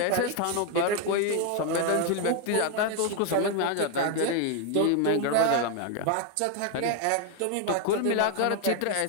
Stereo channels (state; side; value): different; both; correlation 0.01